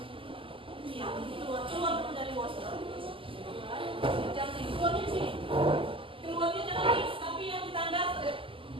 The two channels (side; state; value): left; late; 0.25 ms